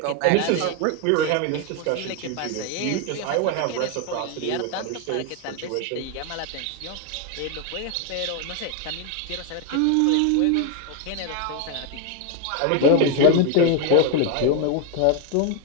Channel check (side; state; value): both; different; correlation 0.01